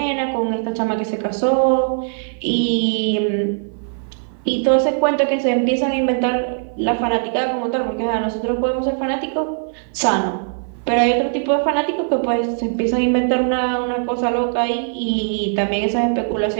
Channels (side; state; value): left; silent; 56 dB below the other